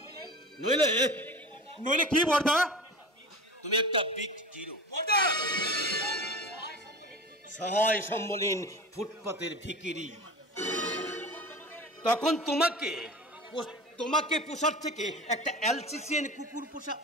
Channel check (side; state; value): both; normal; correlation 0.33